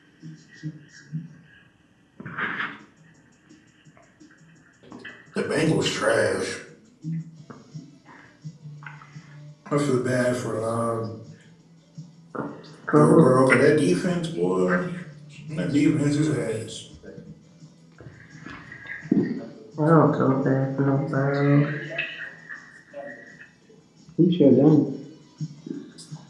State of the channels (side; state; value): both; identical; correlation 1.00